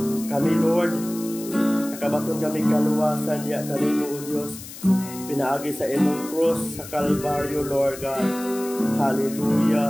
Kami, Lord, nakabaton kami kaluwasan niya kanimo, O Dios. Pinaagi sa imong cross sa Kalbaryo, Lord God.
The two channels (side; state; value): left; noise; hiss, 14 dB below the sound